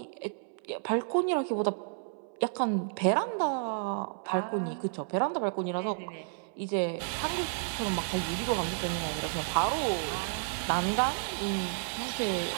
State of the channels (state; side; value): silent; left; 57 dB below the other